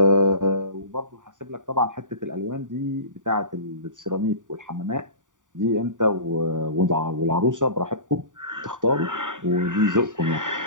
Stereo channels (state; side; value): late; left; 0.87 ms